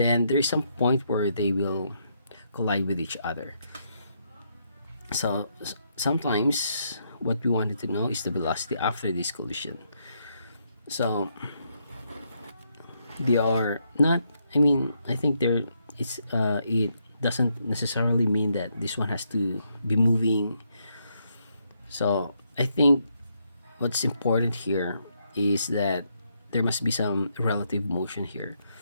there is some point where they will collide with each other. So sometimes what we wanted to know is the velocity after this collision. So they are not, I think there it's it doesn't necessarily mean that this one has to be moving. So I think what's important here is that there must be some relative motion here.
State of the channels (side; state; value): both; inverted; correlation -0.77